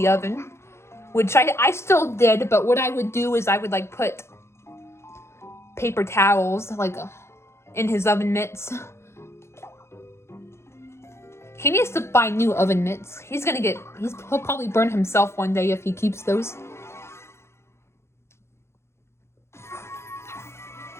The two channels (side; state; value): right; late; 0.13 ms